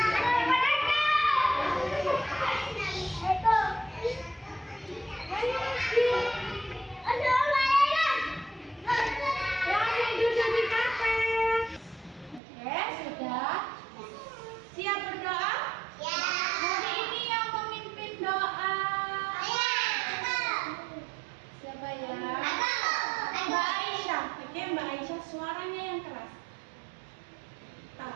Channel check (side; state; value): left; drops out; at 12.4 s